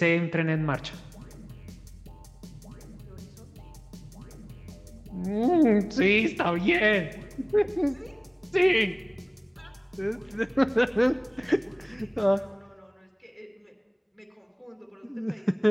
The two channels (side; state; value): both; identical; correlation 1.00